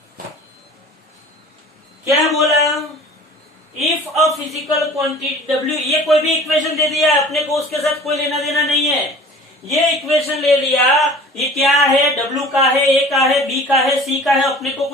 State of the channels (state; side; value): normal; both; correlation 0.44